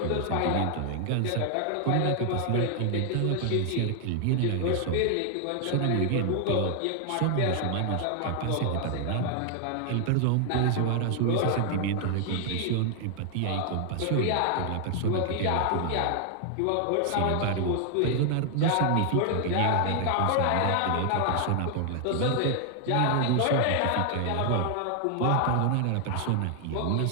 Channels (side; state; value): both; different; correlation 0.00